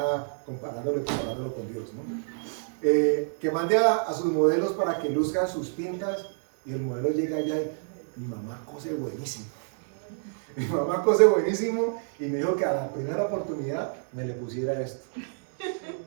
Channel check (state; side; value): silent; left; digital silence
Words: comparándolo con Dios, ¿no? Que mande a sus modelos para que luzcan sus pintas y el modelo llega allá y mi mamá cose buenísimo. Mi mamá cose buenísimo y me dijo que a la primera oportunidad me le pusiera esto.